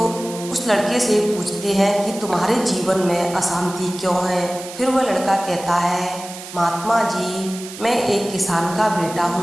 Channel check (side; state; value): right; noise; hiss, 13 dB below the sound